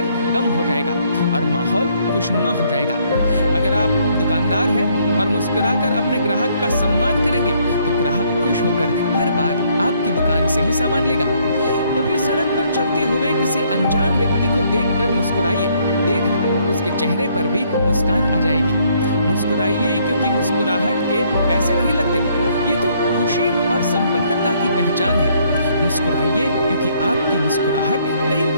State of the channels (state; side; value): inverted; both; correlation -0.67